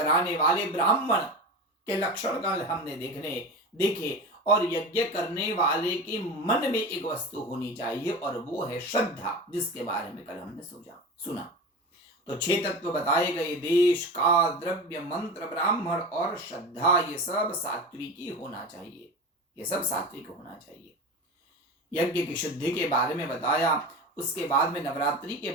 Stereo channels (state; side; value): normal; both; correlation 0.28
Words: वाले ब्राह्मण के लक्षण कल हमने देखे, और यज्ञ करने वाले के मन में एक वस्तु होनी चाहिए और वो है श्रद्धा, जिसके बारे में कल हमने सुना। तो 6 तत्व बताए गए, देश, काल, द्रव्य, मंत्र, ब्राह्मण और श्रद्धा, ये सब सात्विकी होना चाहिए। ये सब सात्विक होना चाहिए। यज्ञ की शुद्धि के बारे में बताया। उसके बाद में नवरात्रि के